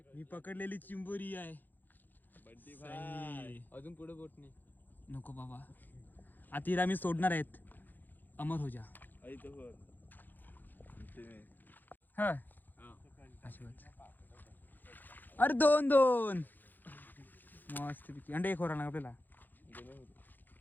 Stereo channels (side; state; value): right; late; 0.087 ms